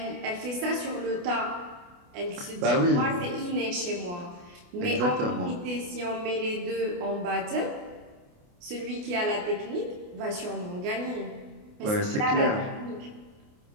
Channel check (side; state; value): left; late; 28 ms